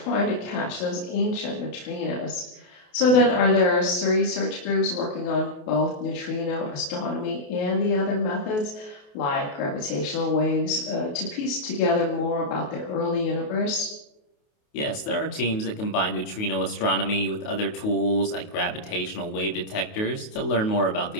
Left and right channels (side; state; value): right; late; 28 ms